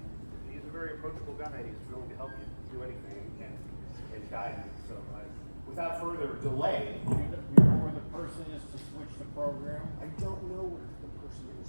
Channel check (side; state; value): both; inverted; correlation -1.00